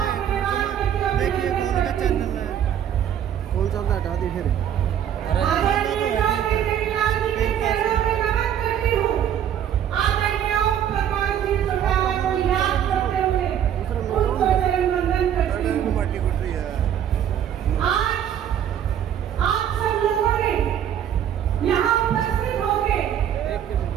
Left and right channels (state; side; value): quieter; left; 9.7 dB